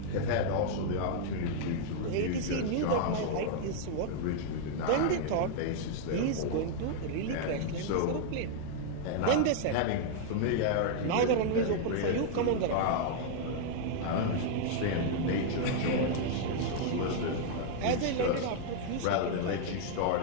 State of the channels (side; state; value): both; different; correlation -0.01